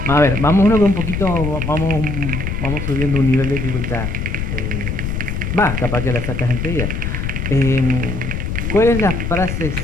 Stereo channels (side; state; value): left; noise; rumble, 3 dB below the sound